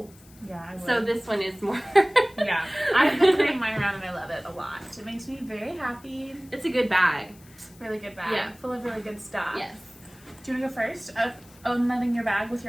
Yeah, I would. So this one is more... Yeah. I've been carrying mine around and I love it a lot. It makes me very happy. It's a good bag. Really good bag. Yeah. Full of really good stuff. Yes. Do you want to go first? Unloading your bag with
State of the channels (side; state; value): left; noise; hiss, 25 dB below the sound